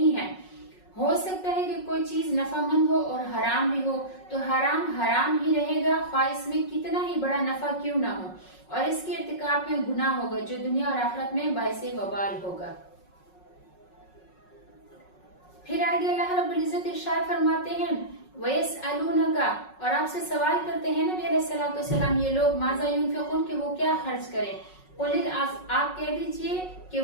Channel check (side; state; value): right; late; 5.4 ms